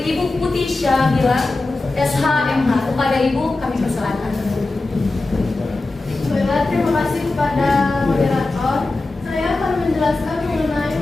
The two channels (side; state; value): right; quieter; 3.2 dB